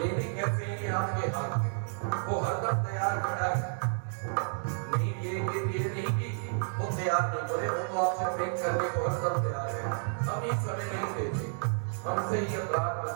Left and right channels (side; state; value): left; silent; 57 dB below the other